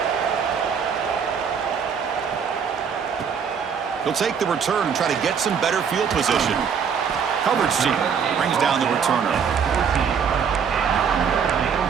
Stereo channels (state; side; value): quieter; left; 6.9 dB